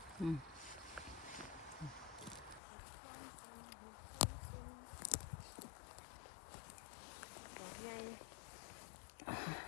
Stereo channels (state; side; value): drops out; right; at 2.6 s